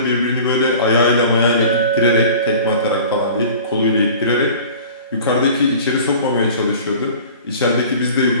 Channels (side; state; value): both; inverted; correlation -0.43